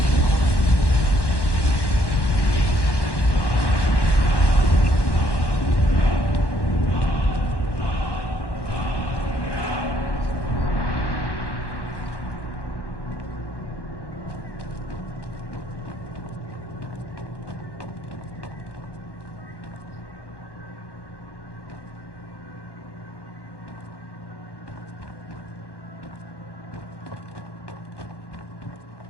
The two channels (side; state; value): right; late; 1.1 ms